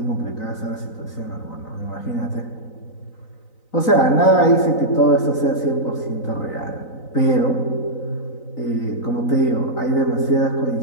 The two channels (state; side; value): late; right; 3.9 ms